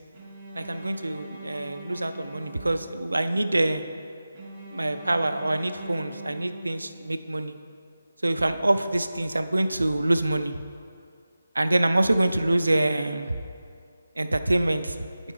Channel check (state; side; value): inverted; both; correlation -0.96